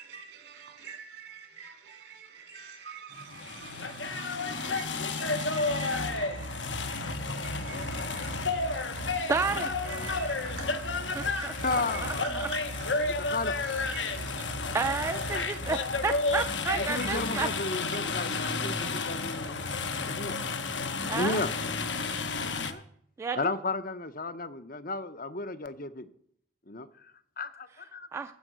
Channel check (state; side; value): normal; both; correlation 0.02